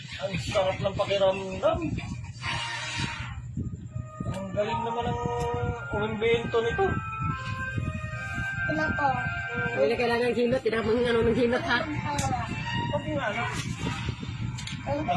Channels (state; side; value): identical; both; correlation 1.00